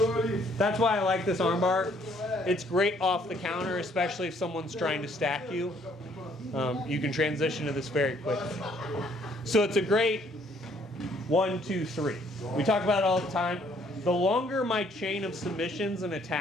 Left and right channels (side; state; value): both; normal; correlation 0.64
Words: That's why I like this arm bar. It's great off the counter, especially if someone's trying to stack you. You can transition to this very quickly. So it's a great 1, 2, 3. We talk about it all the time. The longer my chain of submissions and